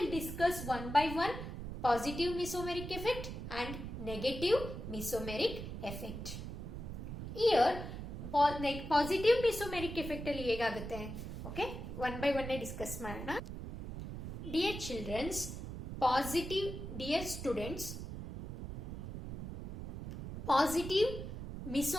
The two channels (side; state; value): right; noise; rumble, 7 dB below the sound